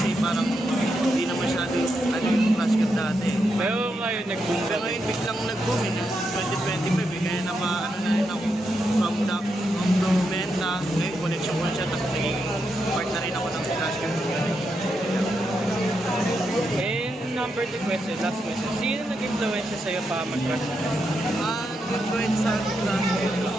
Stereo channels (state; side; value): normal; both; correlation 0.83